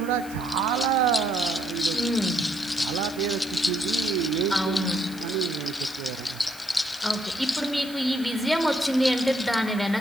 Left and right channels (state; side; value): noise; left; hiss, 18 dB below the sound